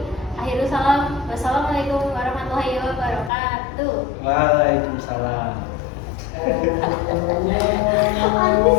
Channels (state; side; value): drops out; right; at 3.3 s